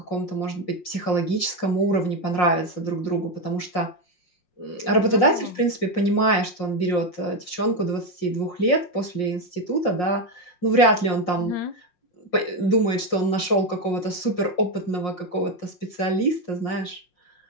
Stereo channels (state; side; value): late; right; 5.6 ms